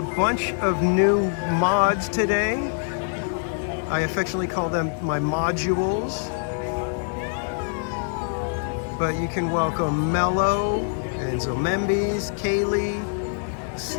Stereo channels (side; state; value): right; silent; digital silence